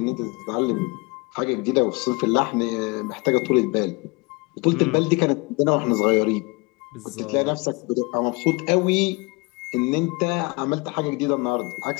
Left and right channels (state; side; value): quieter; right; 27.0 dB